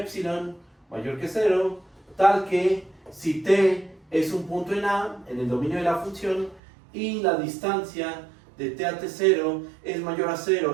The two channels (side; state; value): left; drops out; at 6.6 s